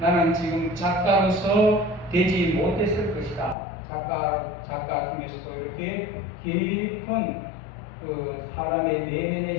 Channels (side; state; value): right; drops out; at 3.6 s